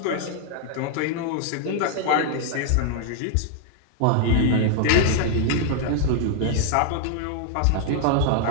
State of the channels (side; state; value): both; different; correlation -0.01